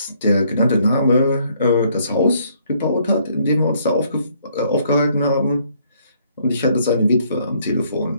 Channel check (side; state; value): both; inverted; correlation -0.67